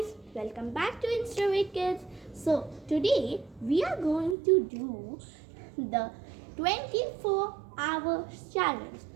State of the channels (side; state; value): left; drops out; at 4.4 s